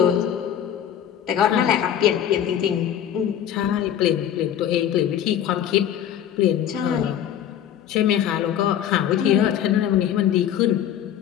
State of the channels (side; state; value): right; quieter; 10.1 dB